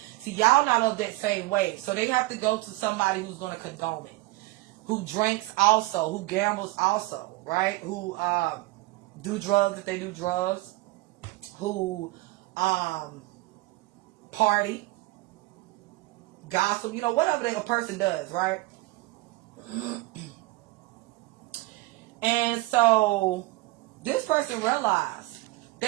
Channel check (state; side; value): quieter; left; 20.4 dB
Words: y'all not of that same way. So they have to go to somebody who's going to condone it. who drinks also, who gambles also, right? Who do drugs if they do drugs, who party, gossip, you know, whatever a person does, right? And so this person realized